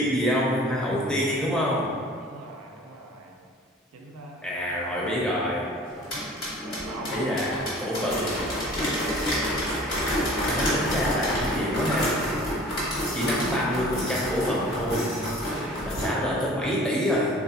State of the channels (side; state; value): both; normal; correlation 0.47